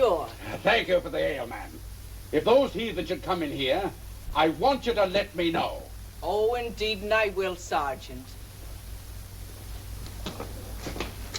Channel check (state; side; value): identical; both; correlation 1.00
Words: Thank you for the ale, man. If those heathen should come in here, I want you to let me know. Oh, indeed, and I will, Sergeant.